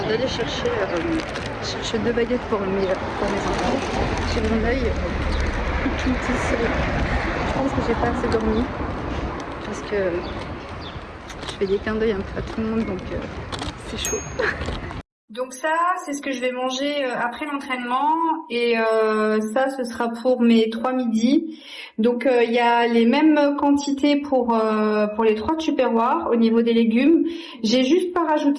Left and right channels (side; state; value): both; identical; correlation 1.00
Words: d'aller chercher 2 baguettes pour mes enfants. J'ai mon œil tout ici. Je pense que j'ai pas assez dormi parce que je fais des clins d'œil un peu à tout le monde, donc c'est chaud. Donc ça, c'est ce que je vais manger après l'entraînement et ça, ce sera pour mes 3 midis. Donc il y a les mêmes quantités pour les 3 tupperwares au niveau des légumes. J'ai juste pas